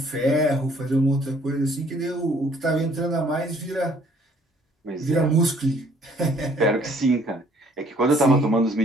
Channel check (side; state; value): both; normal; correlation 0.61